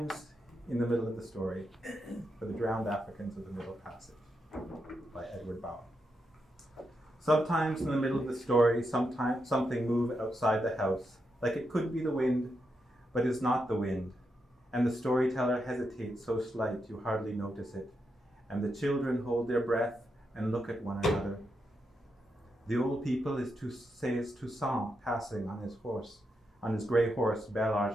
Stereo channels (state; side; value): normal; both; correlation 0.84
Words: in the middle of the story, for the drowned Africans of the Middle Passage, by Edward Bowen. Sometimes in the middle of the story, sometimes something moves outside the house, like it could be the wind, but is not the wind. And the storyteller hesitates so slight you hardly notice it. And the children hold their breath and look at one another. The old people says Toussaint passing on his grey horse, Bel